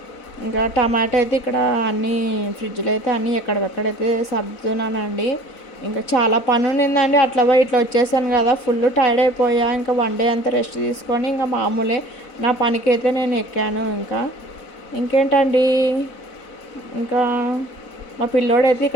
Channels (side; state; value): right; late; 4.0 ms